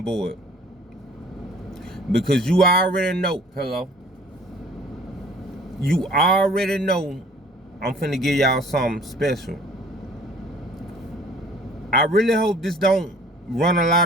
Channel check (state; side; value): normal; both; correlation 0.52